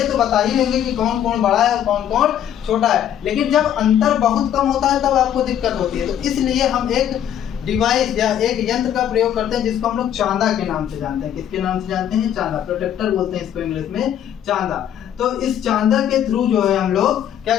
तो बता ही लेंगे कि कौन कोण बड़ा है और कौन कोण छोटा है। लेकिन जब अंतर बहुत कम होता है तब आपको दिक्कत होती है। तो इसलिए हम एक डिवाइस या एक यंत्र का प्रयोग करते हैं जिसको हम लोग चांदा के नाम से जानते हैं। किसके नाम से जानते हैं? चांदा, प्रोटेक्टर बोलते हैं इसको इंग्लिश में, चांदा। तो इस चांदा के थ्रू जो है हम लोग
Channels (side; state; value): right; quieter; 10.2 dB